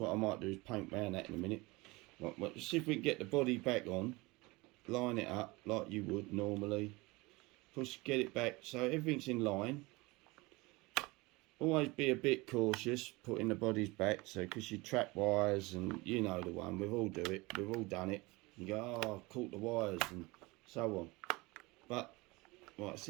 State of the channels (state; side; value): quieter; left; 23.3 dB